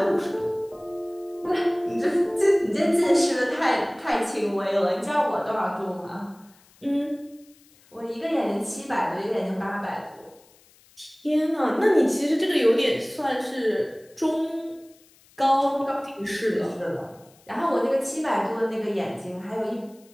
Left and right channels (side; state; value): left; noise; hiss, 29 dB below the sound